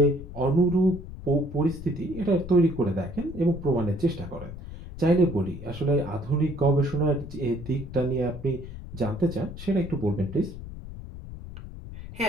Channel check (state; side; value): noise; left; rumble, 12 dB below the sound